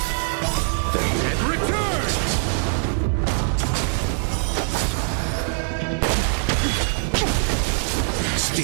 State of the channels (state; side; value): silent; left; digital silence